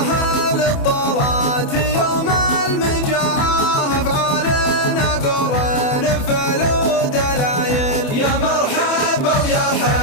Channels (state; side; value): late; right; 28 ms